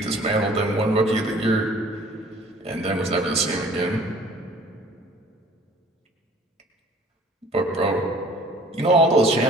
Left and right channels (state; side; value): normal; both; correlation 0.52